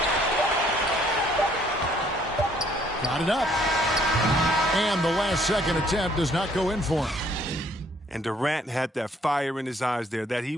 Got it up. And the last second attempt does not go in for him. And Durant had that fire in his eyes there that he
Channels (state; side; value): normal; both; correlation 0.63